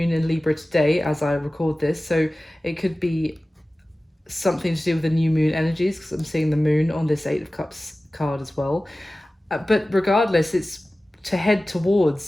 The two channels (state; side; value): normal; both; correlation 0.96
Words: in Libra today as I record this, so it could be something to do with the new moon energies, because I'm seeing the moon on this Eight of Cups card as well. But regardless, it's to head